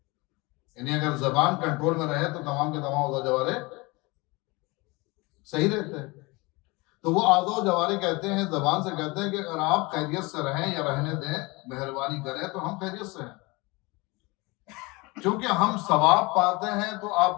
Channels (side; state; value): right; quieter; 25.0 dB